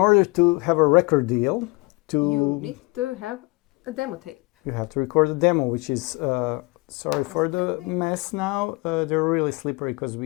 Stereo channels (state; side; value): quieter; right; 26.3 dB